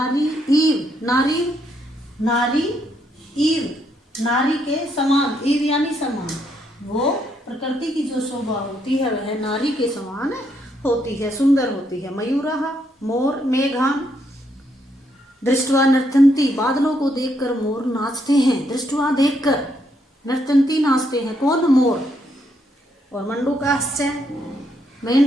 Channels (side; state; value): both; normal; correlation 0.75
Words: के समान, ईव यानी समान, वो प्रकृति की जो शोभा होती है वह नारी के समान होती है, सुंदर होती है। मयूरः मोर, मेघान दृष्टवा नर्तन्ति, बादलों को देखकर मोर नाचते हैं। दृष्टवा देखकर, नर्तन्ति नाचते हैं, कौन? मोर। और मंडूकाश्च